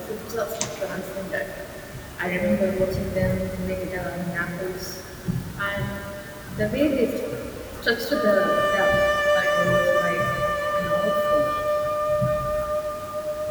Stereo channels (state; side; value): identical; both; correlation 1.00